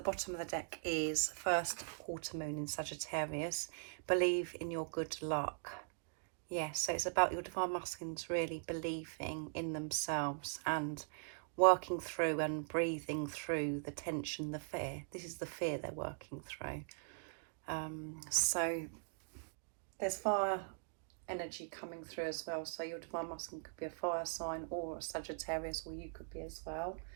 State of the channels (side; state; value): left; silent; digital silence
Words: of the deck is first quarter moon in Sagittarius. Believe in your good luck. Yes, so it's about your Divine Masculines really believing in themselves and working through and breathing through the tension, the fear. This is the fear they're working through. So there's fire energy coming through as well. So your Divine Masculine could be a fire sign or a Sagittarius, or you could be as well.